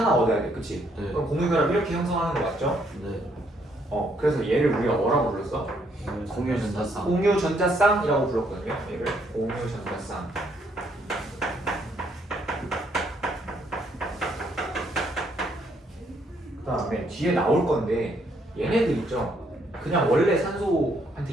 얻어야 돼. 그치? 네. 그럼 공유결합 이렇게 형성하는 거 맞죠? 네. 그래서 얘를 우리가 뭐라고 불렀어? 공유 전자쌍. 공유 전자쌍이라고 불렀거든요. 얘를 공유 전자쌍. 그 다음에 뒤에 나올 건데 얘네들 있죠? 그냥 원래 산소한테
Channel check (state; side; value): normal; both; correlation 0.70